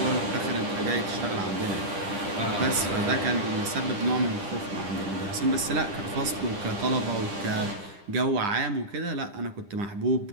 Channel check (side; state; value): left; late; 9.9 ms